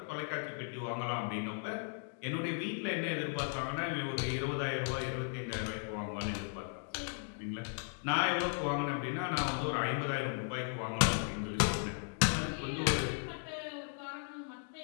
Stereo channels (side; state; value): right; silent; 53 dB below the other